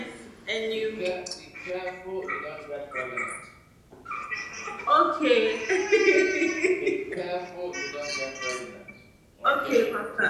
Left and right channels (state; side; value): identical; both; correlation 1.00